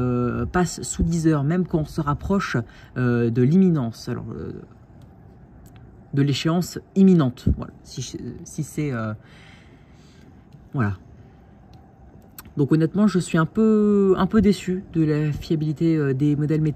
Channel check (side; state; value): both; identical; correlation 1.00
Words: passe sous 10 heures, même quand on se rapproche de l'imminence. Alors, de l'échéance imminente. Voilà. Si c'est... voilà. Donc honnêtement, je suis un peu déçu de la fiabilité des modèles